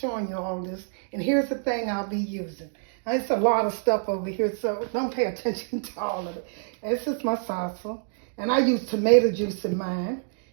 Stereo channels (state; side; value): silent; left; digital silence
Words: you all this. And here's the thing I'll be using. Now, it's a lot of stuff over here, so don't pay attention to all of it. This is my salsa. And I use tomato juice in mine.